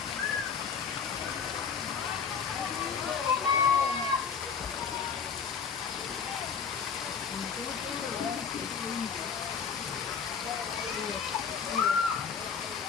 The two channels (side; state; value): right; quieter; 6.5 dB